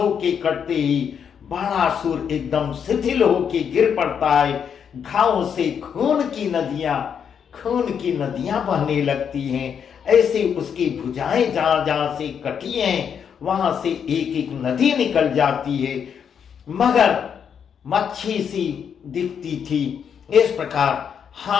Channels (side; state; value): right; quieter; 7.6 dB